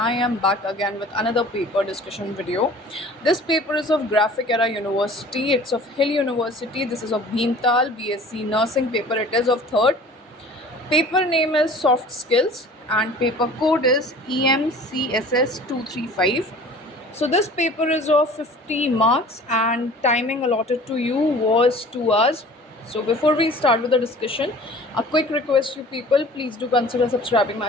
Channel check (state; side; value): normal; both; correlation 0.45